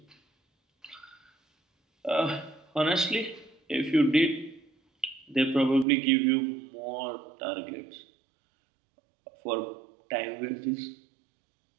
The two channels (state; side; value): drops out; left; at 5.9 s